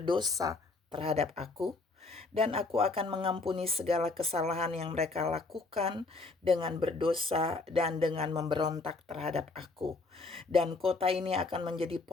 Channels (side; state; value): right; quieter; 3.6 dB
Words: terhadap aku, dan aku akan mengampuni segala kesalahan yang mereka lakukan dengan berdosa dan dengan memberontak terhadap aku. Dan kota ini akan menjadi